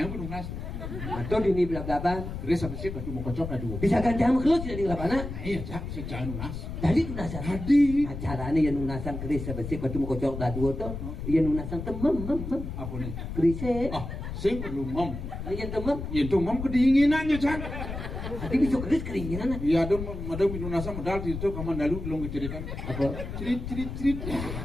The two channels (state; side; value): noise; left; rumble, 7 dB below the sound